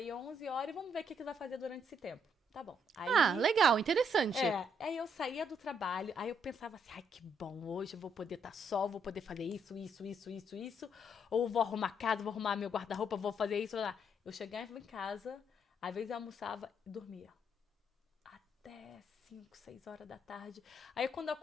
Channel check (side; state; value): both; normal; correlation 0.72